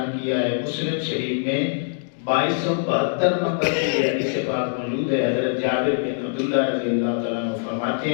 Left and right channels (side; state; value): right; silent; digital silence